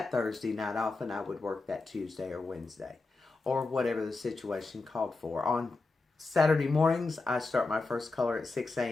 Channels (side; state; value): right; quieter; 3.6 dB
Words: Thursday night off and I would work that Tuesday or Wednesday. Or whatever the situation called for. On Saturday mornings, I start my first color at 6